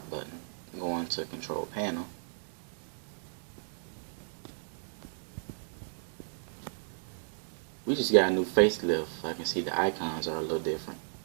going to Control Panel. We just got a new facelift. I can see the icons are a little different.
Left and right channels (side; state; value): left; silent; digital silence